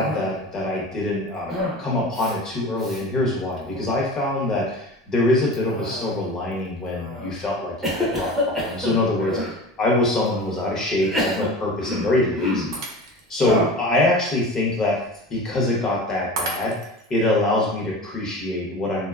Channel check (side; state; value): both; normal; correlation 0.35